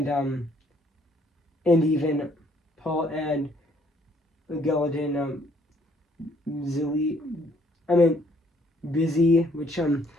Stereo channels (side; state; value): both; normal; correlation 0.65